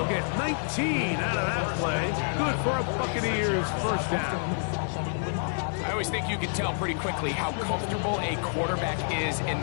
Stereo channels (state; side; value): silent; right; 59 dB below the other